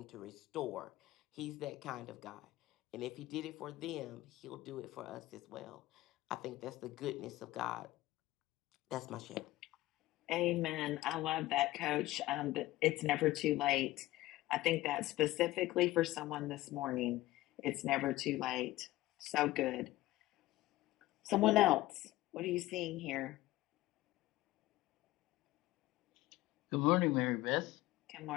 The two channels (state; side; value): quieter; right; 17.2 dB